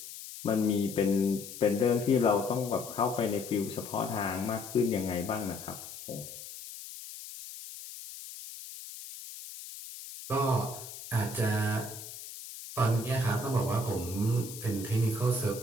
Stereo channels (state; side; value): noise; left; hiss, 12 dB below the sound